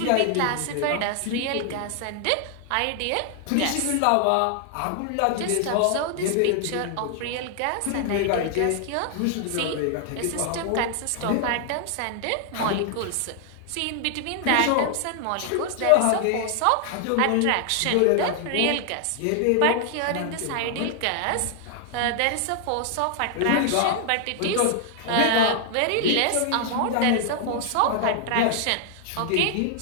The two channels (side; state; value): both; different; correlation 0.00